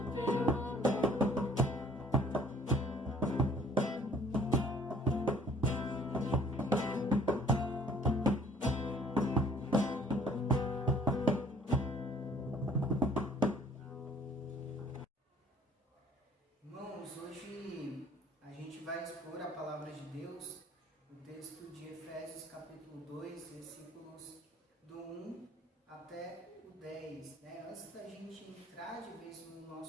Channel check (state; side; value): normal; both; correlation 0.55